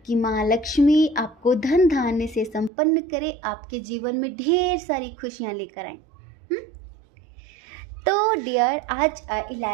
कि माँ लक्ष्मी आपको धन धान्य से संपन्न करे, आपके जीवन में ढेर सारी खुशियाँ लेकर आए। तो डियर, आज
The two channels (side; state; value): left; drops out; at 2.7 s